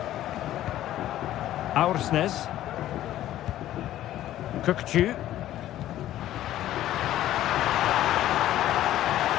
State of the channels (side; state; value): right; quieter; 13.3 dB